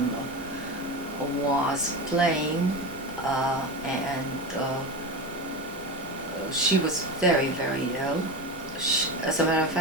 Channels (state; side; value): normal; both; correlation 0.22